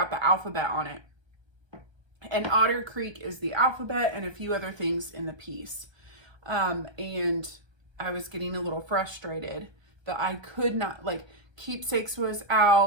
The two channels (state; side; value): late; left; 1.3 ms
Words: the alphabet on it. And Otter Creek is the alphabet and a few other things in the piece. And I was getting a little frustrated that I could not, like, Keepsakes was